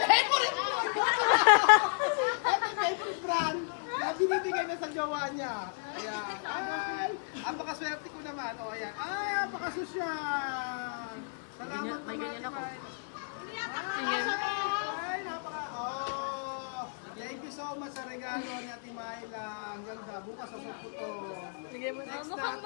Favorite brand na binibigay na sa jowa niya. Ayan. Ay, apakaswerte ko naman. O, ayan. Ay, apakasosyal. Salamat naman. May ganyan ako. Ay, thank you so much sa regalo ni Ate Myla. Ang ganda. Bukas sa po to. Sige mo. Next Mukhang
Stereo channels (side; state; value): right; silent; digital silence